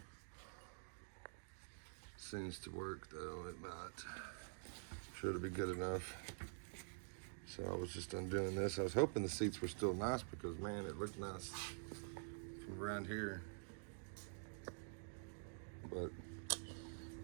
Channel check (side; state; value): left; silent; digital silence